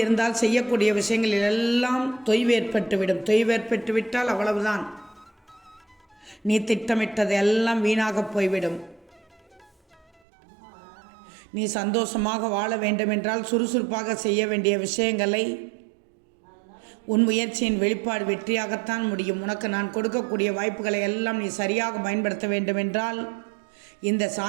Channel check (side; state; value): left; drops out; at 10.1 s